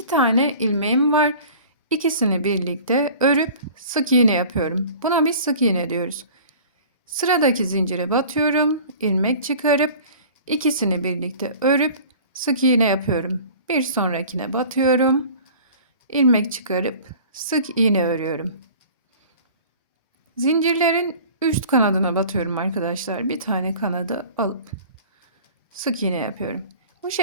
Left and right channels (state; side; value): inverted; both; correlation -0.44